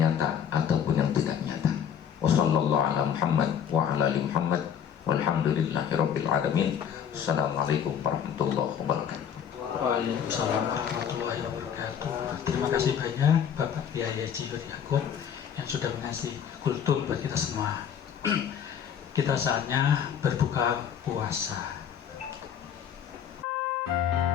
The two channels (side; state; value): right; quieter; 8.4 dB